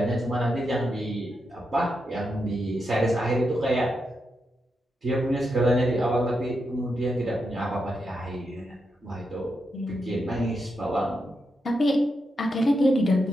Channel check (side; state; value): both; normal; correlation 0.85